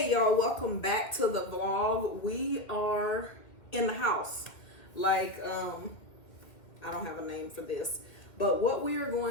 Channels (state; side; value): late; right; 2.0 ms